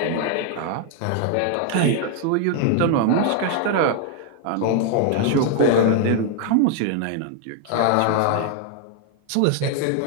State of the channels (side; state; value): both; different; correlation 0.00